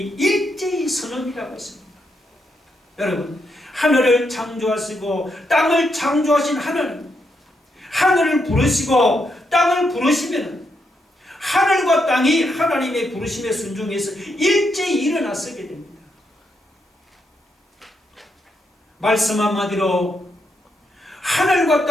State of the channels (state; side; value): normal; both; correlation 0.80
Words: 일제히 선언이라고 했습니다. 여러분, 하늘을 창조하시고 땅을 창조하신 하나님, 하늘을 부르시고 땅을 부르시면 하늘과 땅이 하나님의 부르심에 순종해서 일제히 일어나서게 됩니다. 말씀 한마디로 하늘과